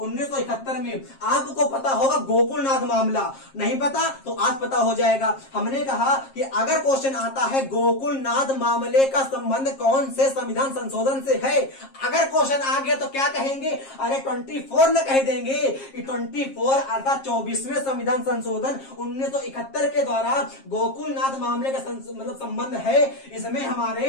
में, आपको पता होगा गोकुलनाथ मामला। नहीं पता तो आज पता हो जाएगा। हमने कहा कि अगर क्वेश्चन आता है गोकुलनाथ मामले का संबंध कौन से संविधान संशोधन से है, अगर क्वेश्चन आ गया तो क्या कहेंगे? अरे 24 न कह देंगे कि 24 अर्थात 24वें संविधान संशोधन 1971 के द्वारा गोकुलनाथ मामले का मतलब संबंध है। इसमें हमारे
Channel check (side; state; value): right; late; 7.4 ms